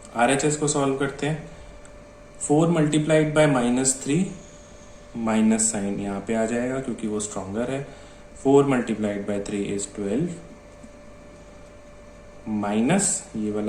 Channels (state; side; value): identical; both; correlation 1.00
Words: RHS को सॉल्व करते हैं। 4 मल्टीप्लाइड बाय -3, माइनस साइन यहाँ पे आ जाएगा क्योंकि वो स्ट्रॉन्गर है। 4 मल्टीप्लाइड बाय 3 is 12, माइनस ये